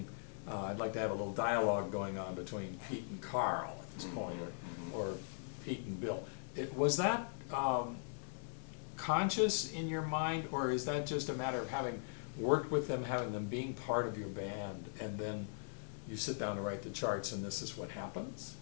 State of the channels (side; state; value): right; silent; digital silence